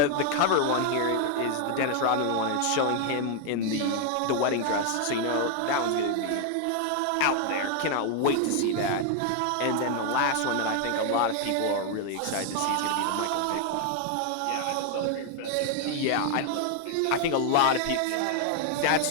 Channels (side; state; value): both; different; correlation 0.00